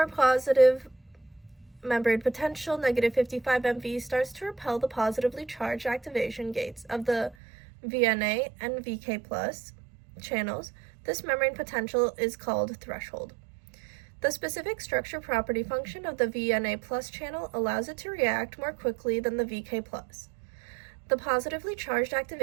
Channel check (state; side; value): drops out; left; at 7.4 s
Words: positive membrane potential, -55 MV, starts to repel the positively charged activation gates of the VNA and VK+ channels. This membrane potential is called threshold. The specific structure property function of the VNA+ channel allows it to react more quickly than the VK+. The positively charged